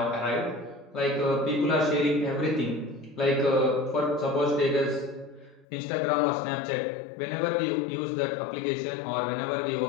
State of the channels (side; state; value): right; drops out; at 5.7 s